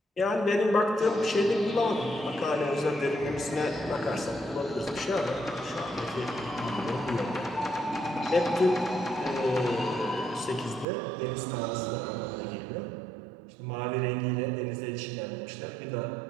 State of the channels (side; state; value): left; drops out; at 10.9 s